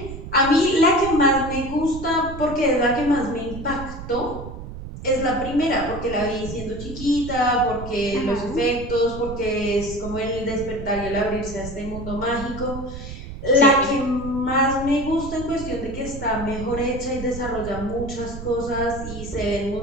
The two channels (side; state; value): right; noise; rumble, 10 dB below the sound